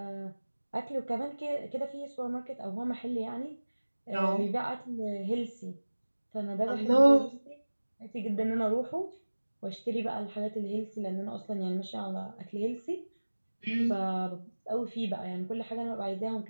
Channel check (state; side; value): inverted; both; correlation -1.00